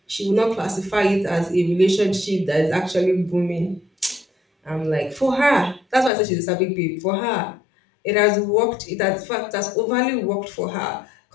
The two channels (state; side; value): drops out; right; at 6.1 s